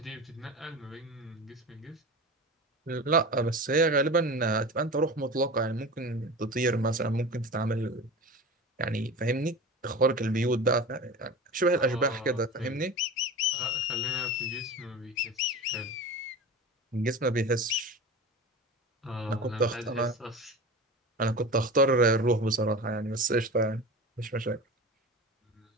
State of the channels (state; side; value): normal; both; correlation 0.31